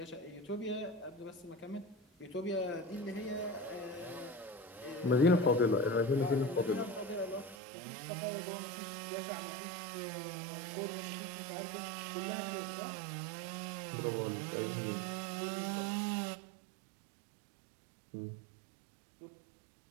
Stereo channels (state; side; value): drops out; left; at 7.6 s